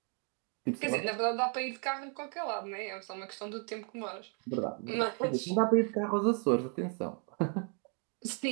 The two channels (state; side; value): quieter; left; 38.2 dB